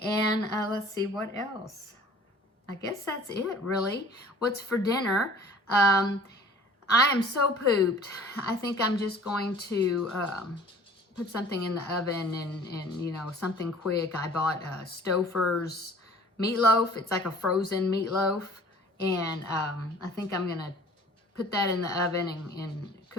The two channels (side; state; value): both; normal; correlation 0.49